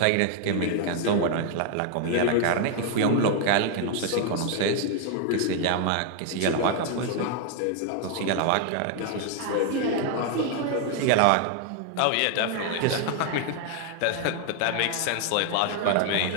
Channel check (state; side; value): different; both; correlation 0.00